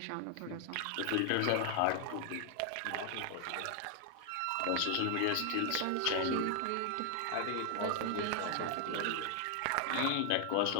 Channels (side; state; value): both; different; correlation 0.00